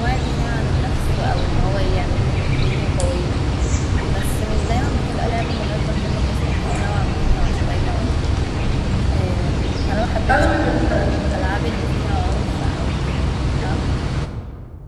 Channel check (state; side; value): identical; both; correlation 1.00